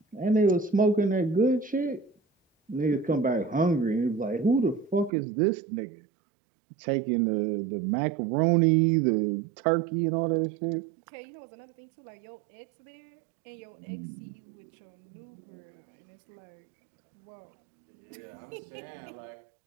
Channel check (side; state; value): left; drops out; at 5.1 s